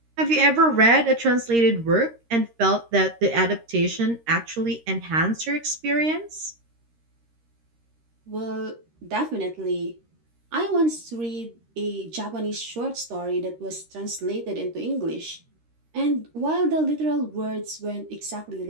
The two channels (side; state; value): left; late; 13 ms